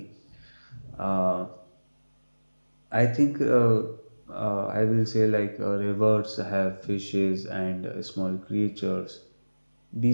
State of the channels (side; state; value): both; inverted; correlation -1.00